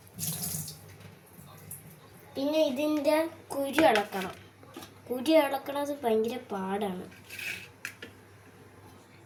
പിന്നെ ഇതിൻ്റെ കുരു ഇളക്കണം. കുരു ഇളക്കണത് ഭയങ്കര പാടാണ്.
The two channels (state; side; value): identical; both; correlation 1.00